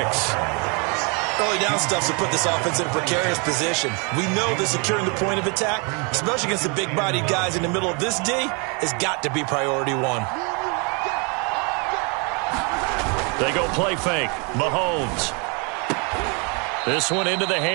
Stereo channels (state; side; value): quieter; left; 33.5 dB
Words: Early down stuff to put this offense in a precarious position. We know that securing the point of attack, especially against the big-bodied guys in the middle of this D, has got to be priority one. They go play fake. Mahomes. This one into the